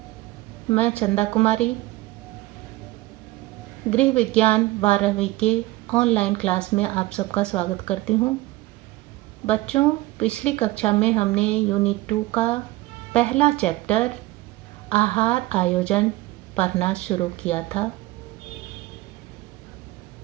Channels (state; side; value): quieter; left; 18.7 dB